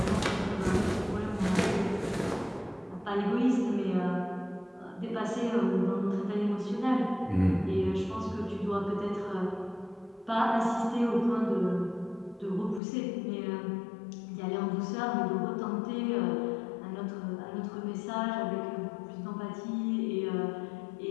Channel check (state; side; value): drops out; right; at 12.8 s